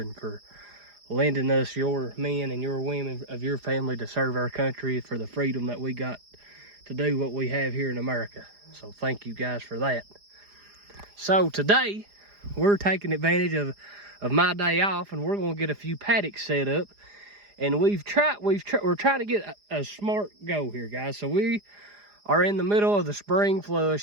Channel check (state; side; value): late; left; 4.9 ms